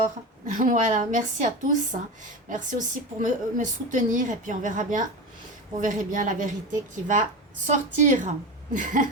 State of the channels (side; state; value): both; normal; correlation 0.24